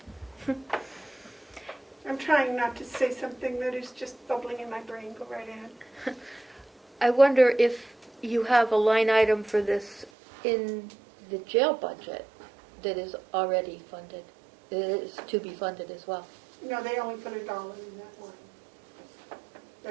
I'm trying not to say something that is just bubbling in my brain. Go right ahead. I wonder if you have a line item for this in the jail budget that is already funded, that is to be funded as well. No, they only put $1 in that line.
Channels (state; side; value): drops out; left; at 10.1 s